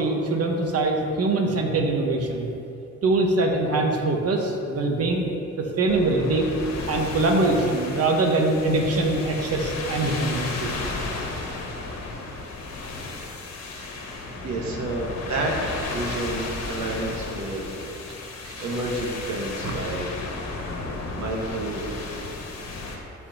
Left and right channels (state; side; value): normal; both; correlation 0.27